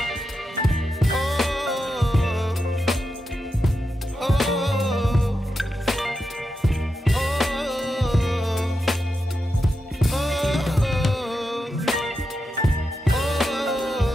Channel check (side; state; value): both; normal; correlation 0.87